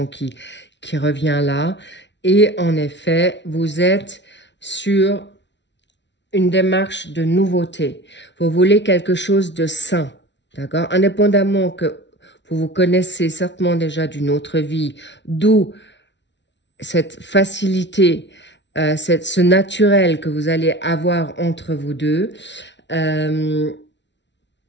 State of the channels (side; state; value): right; late; 0.51 ms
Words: qui revient là. Et en effet, vous êtes sur une démarche de nouveauté. Vous voulez quelque chose de sain, d'accord? Indépendamment que Vous vous connaissez certainement déjà d'une autre vie, d'où cette facilité, ce naturel que vous allez avoir entre vous deux. On